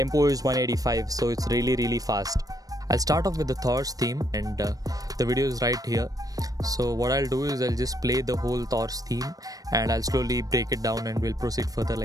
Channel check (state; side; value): late; left; 0.18 ms